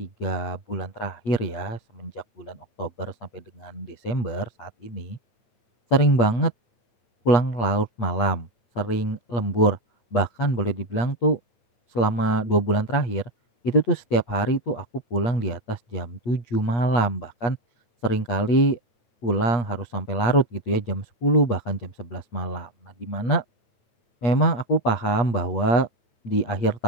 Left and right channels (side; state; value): right; late; 8.5 ms